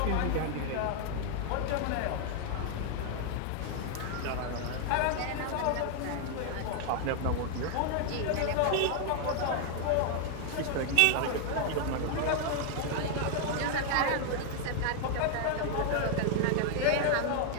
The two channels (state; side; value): different; both; correlation 0.00